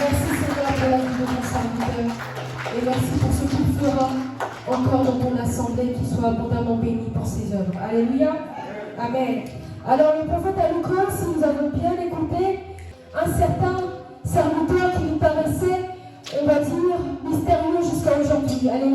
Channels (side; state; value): both; identical; correlation 1.00